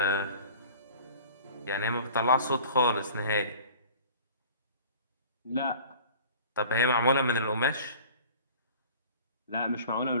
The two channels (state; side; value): inverted; both; correlation -0.44